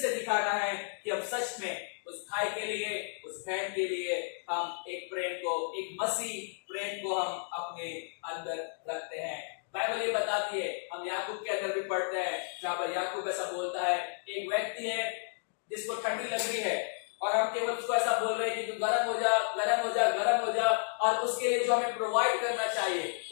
दिखाना है कि हम सच में उस भाई के लिए, उस बहन के लिए हम एक प्रेम को, एक मसीह प्रेम को हम अपने अंदर रखते हैं। बाइबल ये बताती है, हम याकूब के अंदर भी पढ़ते हैं, जहां पर याकूब ऐसा बोलता है, एक व्यक्ति है जिसको ठंडी लग रही है और हम केवल उसको ऐसा बोल रहे हैं कि तू गर्म हो जा, गर्म हो जा, गर्म हो जा, और उसके लिए जो हमें प्रोवाइड करना चाहिए,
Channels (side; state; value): right; silent; digital silence